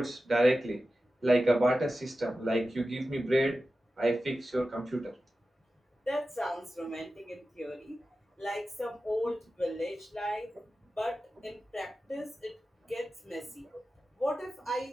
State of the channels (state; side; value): normal; both; correlation 0.93